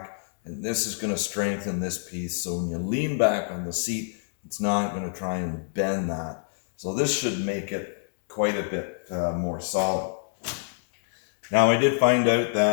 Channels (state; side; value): silent; right; digital silence